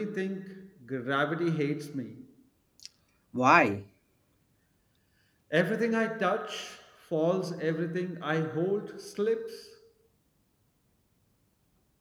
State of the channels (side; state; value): both; identical; correlation 1.00